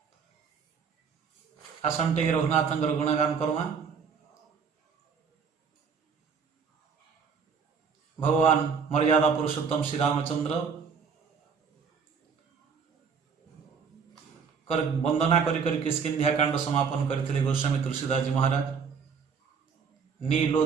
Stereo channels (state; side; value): quieter; left; 6.1 dB